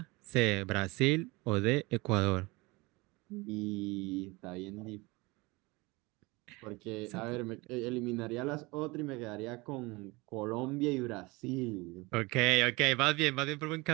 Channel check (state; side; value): quieter; left; 24.0 dB